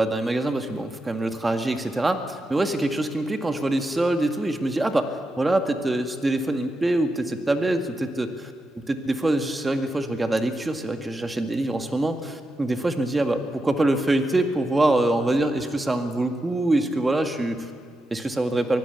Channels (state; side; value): normal; both; correlation 0.87